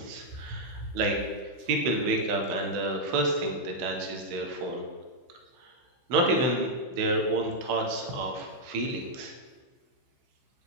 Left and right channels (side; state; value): left; late; 15 ms